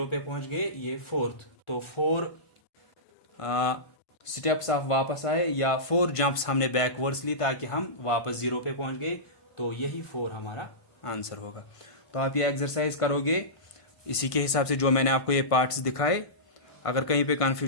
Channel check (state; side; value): late; right; 1.5 ms